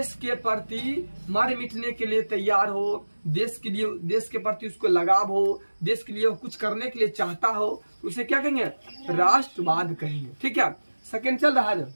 के प्रति मर मिटने के लिए तैयार हो, देश के लिए, देश के प्रति उसको लगाव हो, देश के लिए वो कुछ करने के लिए चाहता हो, उसे क्या कहेंगे? राष्ट्रवाद कहेंगे। ठीक है, सेकंड चल रहा है।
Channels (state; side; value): inverted; both; correlation -1.00